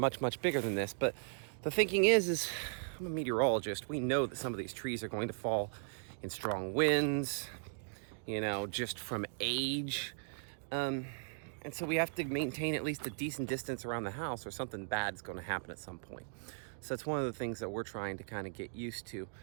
much bigger than this. But the thinking is I'm a meteorologist. We know that some of these trees are going to fall in strong winds, just from age. And so we have to maintain at least a decent distance around the house or something bad is going to happen at some point. So that's one of the things that we're trying to kind of get used to.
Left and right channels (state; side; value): silent; left; digital silence